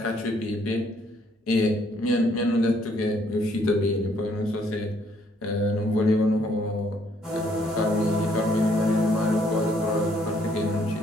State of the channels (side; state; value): both; normal; correlation 0.67